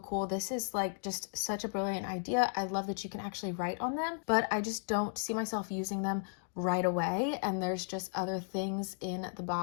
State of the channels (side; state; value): right; silent; digital silence